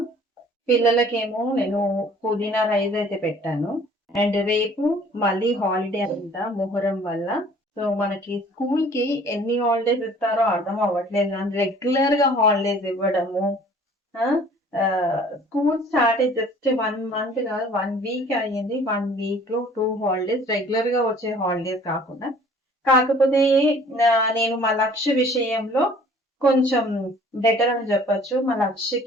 పిల్లలకేమో నేను పుదీనా రైస్ అయితే పెట్టాను. అండ్ రేపు మళ్ళీ హాలిడే అంట మొహర్రం వల్ల. సో, మనకి స్కూల్‌కి ఎన్ని హాలిడేస్ ఇస్తారో అర్థం అవ్వట్లేదు గానీ రెగ్యులర్‌గా హాలిడేస్ ఇవ్వడము. ఆ! స్కూల్ స్టార్ట్ అయ్యి జస్ట్ 1 మంత్ కాదు 1 వీక్ అయ్యింది. 1 వీక్‌లో 2 హాలిడేస్ రెగ్యులర్‌గా వచ్చే హాలిడేస్ కాకుండా. కాకపోతే నేను మా లక్ష్య విషయంలో కొంచెం బెటర్ అని చెప్పొచ్చు. మా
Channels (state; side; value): normal; both; correlation 0.52